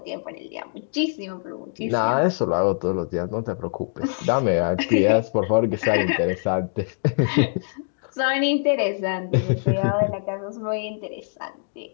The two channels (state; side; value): silent; right; digital silence